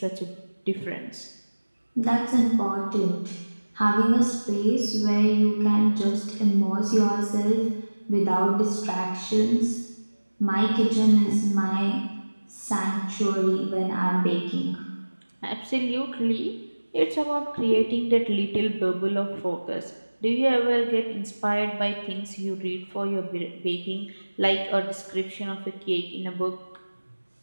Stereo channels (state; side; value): inverted; both; correlation -1.00